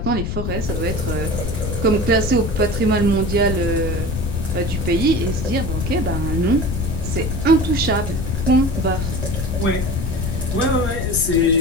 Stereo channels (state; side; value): noise; left; rumble, 2 dB below the sound